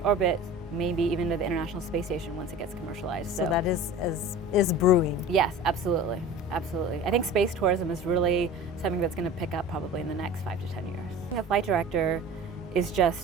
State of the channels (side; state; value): both; normal; correlation 0.38